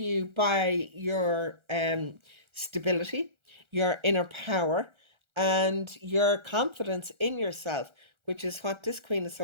by your stability, your inner power, and your confidence in yourself, which is what this Queen of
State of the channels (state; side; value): late; left; 1.4 ms